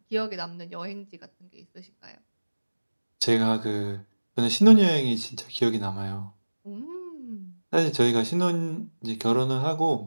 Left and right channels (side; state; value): both; inverted; correlation -1.00